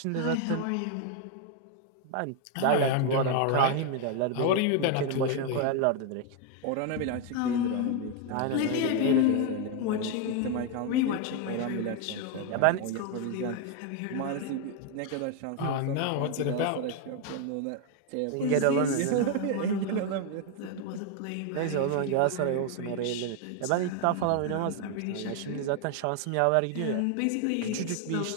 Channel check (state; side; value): different; both; correlation 0.01